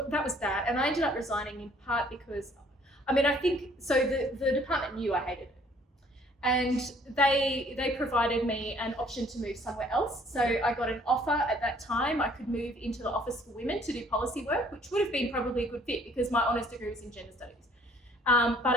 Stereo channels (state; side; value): normal; both; correlation 0.59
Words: that, and I ended up resigning in part because, I think the department knew I hated it, and they provided me an option to move somewhere else. So I got an offer at that time. I could move into the Office for Women to do policy work, which would have been probably a good fit because my honours degree was in gender studies. But